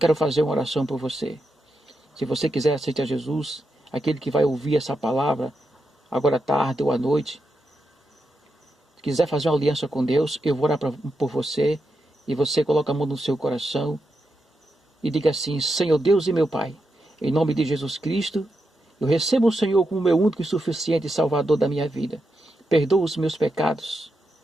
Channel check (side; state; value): both; normal; correlation 0.86